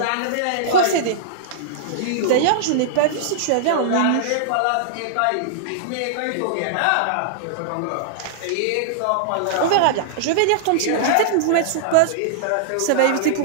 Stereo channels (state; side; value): different; both; correlation -0.02